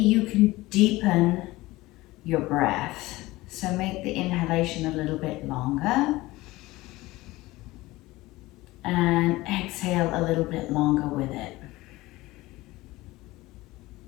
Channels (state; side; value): quieter; right; 19.3 dB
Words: can deepen your breath. So make the inhalation a little bit longer and exhale a little bit longer with it.